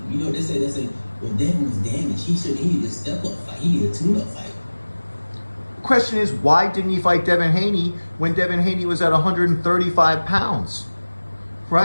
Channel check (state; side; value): inverted; both; correlation -1.00